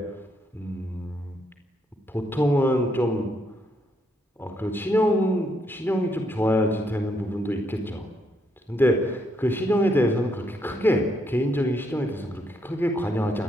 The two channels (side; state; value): both; normal; correlation 0.75